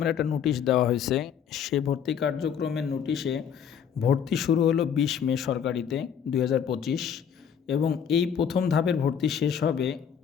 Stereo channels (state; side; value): quieter; right; 7.9 dB